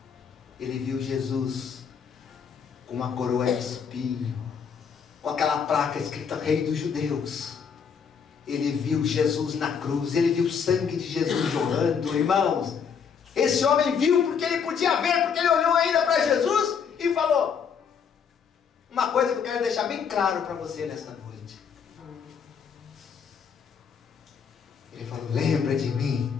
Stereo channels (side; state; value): right; quieter; 6.8 dB